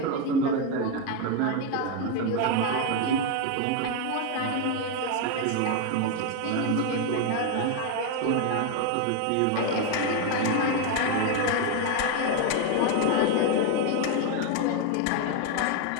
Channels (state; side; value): different; both; correlation 0.01